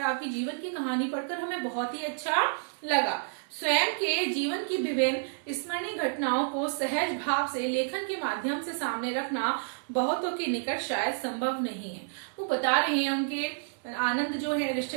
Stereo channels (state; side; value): silent; left; digital silence